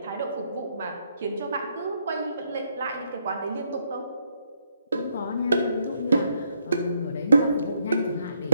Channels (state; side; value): inverted; both; correlation -0.74